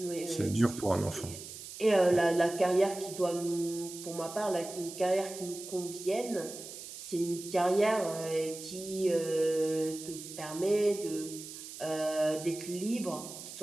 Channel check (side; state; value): right; noise; hiss, 12 dB below the sound